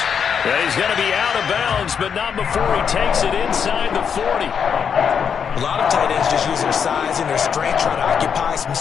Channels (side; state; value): right; quieter; 7.1 dB